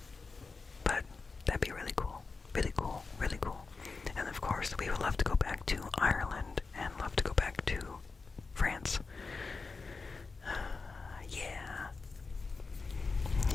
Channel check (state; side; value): quieter; right; 4.3 dB